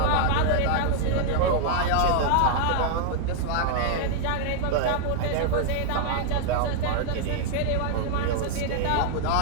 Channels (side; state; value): both; different; correlation -0.01